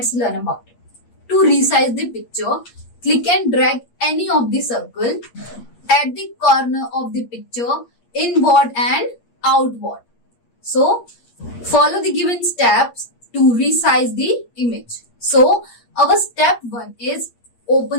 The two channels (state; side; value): late; right; 8.5 ms